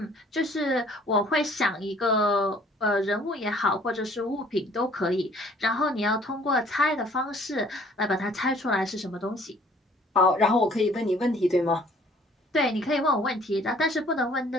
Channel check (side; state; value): both; normal; correlation 0.57